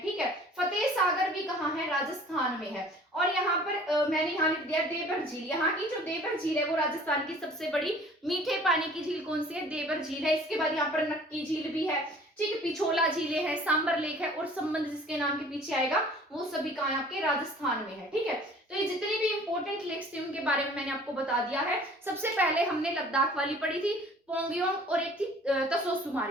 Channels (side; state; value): both; normal; correlation 0.50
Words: ठीक है। फतेह सागर भी कहां है, राजस्थान में है। और यहाँ पर मैंने यहाँ लिख दिया देवर झील। यहाँ की जो देवर झील है वो राजस्थान की सबसे बड़ी मीठे पानी की झील कौन सी है, देवर झील है। इसके बाद यहाँ पर नक्की झील भी है, ठीक है, पिछोला झीलें है, सांबर लेक है, और संबंध जिसके नाम के पीछे आएगा वो सभी कहाँ है, आपके राजस्थान में है, ठीक है। तो ये जितनी भी इंपॉर्टेंट लेक्स थी उनके बारे में मैंने आपको बता दिया है। सबसे पहले हमने लद्दाख वाली पढ़ी थी, पोंगयोंग, और एक थी